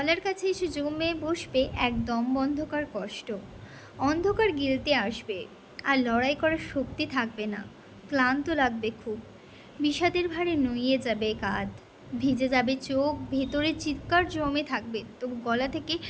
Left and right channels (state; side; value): identical; both; correlation 1.00